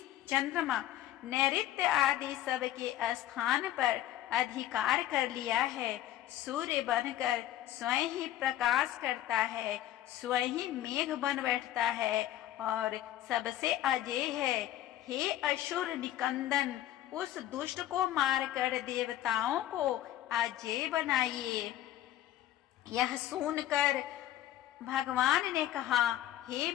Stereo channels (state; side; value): quieter; right; 13.2 dB